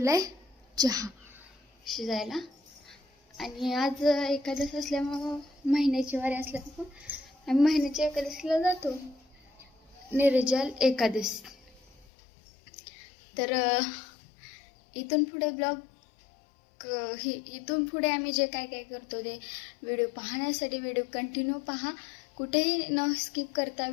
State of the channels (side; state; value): right; drops out; at 12.1 s